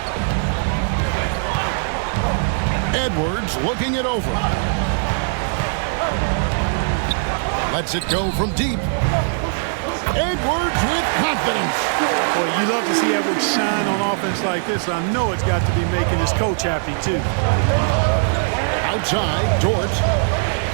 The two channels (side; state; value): left; silent; digital silence